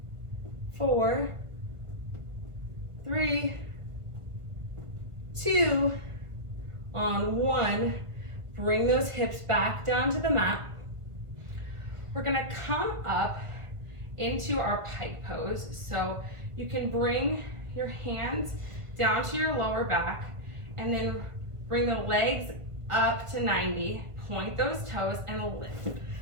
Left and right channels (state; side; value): late; left; 1.5 ms